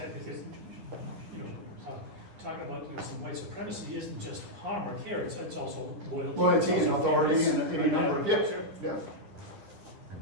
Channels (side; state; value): left; late; 10 ms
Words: talking about some white supremacy isn't just harm or care, it's also loyalty and authority and any number of Sure.